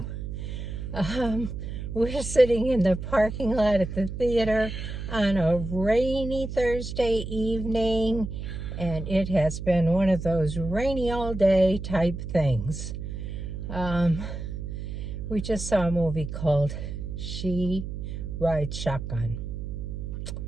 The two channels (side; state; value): right; noise; hum, 6 dB below the sound